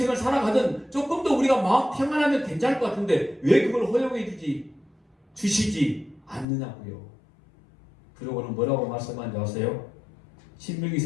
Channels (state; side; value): drops out; right; at 6.5 s